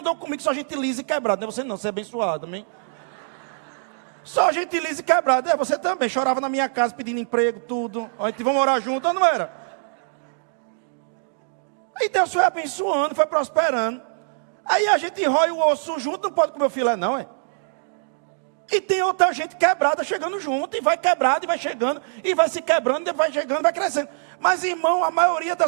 comigo, só gente lisa e quebrada. Não é você não, você é abençoado, amém? Só gente lisa e quebrada. Você também, chorava na minha casa pedindo emprego, tudo. A gente vai morar junto, não era? Aí Deus foi abençoando, foi prosperando. Aí a gente rói o osso junto, não pode comer o filé não, é? E tem outra gente quebrada chegando junto, e vai quebrado, e vai chegando, e vai se quebrando, e vai chegando, vai crescendo. Mas, irmão, a maioria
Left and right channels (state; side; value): silent; left; digital silence